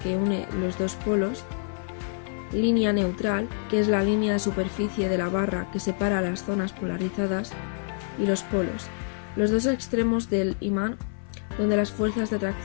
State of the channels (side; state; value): right; silent; 59 dB below the other